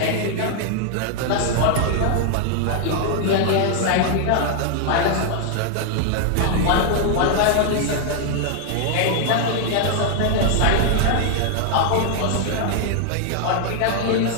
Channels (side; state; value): both; different; correlation 0.00